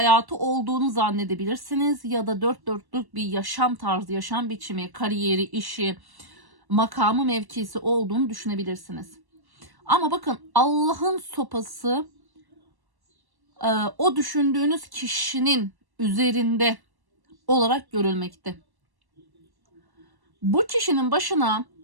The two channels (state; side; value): late; left; 1.1 ms